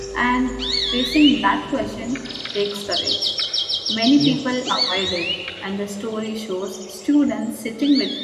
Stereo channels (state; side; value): identical; both; correlation 1.00